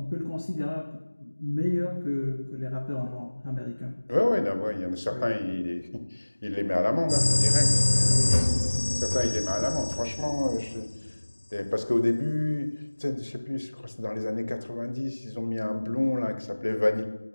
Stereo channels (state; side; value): inverted; both; correlation -1.00